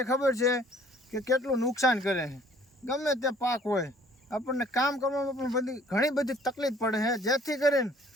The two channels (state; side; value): normal; both; correlation 0.56